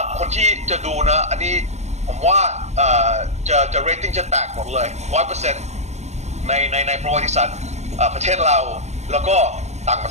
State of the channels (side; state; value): left; late; 0.33 ms